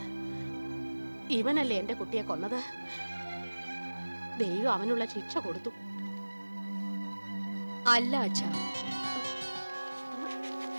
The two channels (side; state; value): both; inverted; correlation -1.00